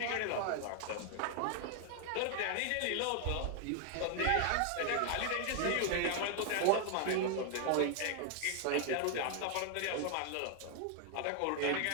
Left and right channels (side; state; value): both; different; correlation 0.00